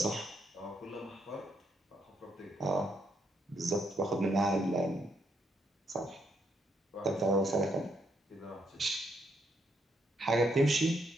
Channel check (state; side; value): normal; both; correlation 0.75